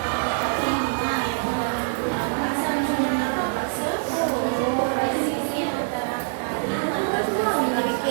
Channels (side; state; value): left; silent; digital silence